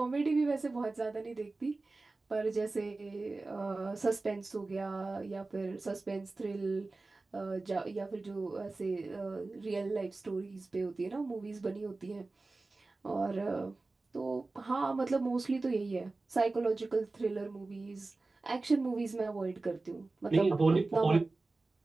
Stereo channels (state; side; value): quieter; left; 3.4 dB